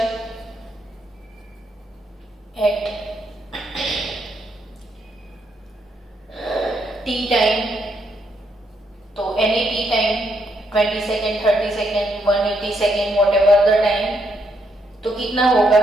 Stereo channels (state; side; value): normal; both; correlation 0.76